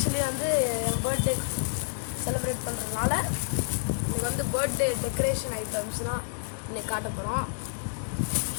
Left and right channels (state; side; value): silent; right; 57 dB below the other